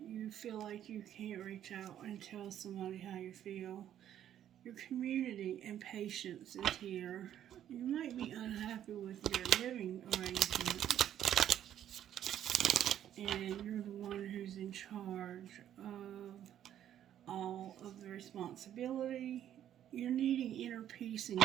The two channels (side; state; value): left; quieter; 10.8 dB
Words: you feel like you can't reach out and tell somebody how you feel. Your community and patience is here. You might be unhappy with your living arrangement, and you're the one who's in charge of all of the responsibility. You're needing inner peace in